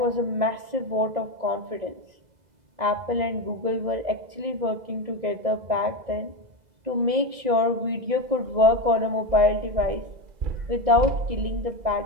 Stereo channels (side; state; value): left; late; 2.0 ms